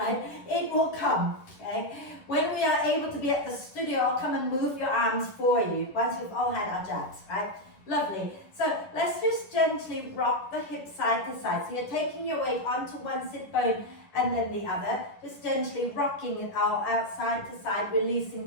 It will come, okay? When we are able to be at the studio, I'll come and move your arms for you once we've all had our jabs, right? Lovely. So let's just gently rock the hips side to side. So you're taking your weight onto one sit bone and then the other, just gently rocking it out side to side,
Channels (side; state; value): right; late; 10 ms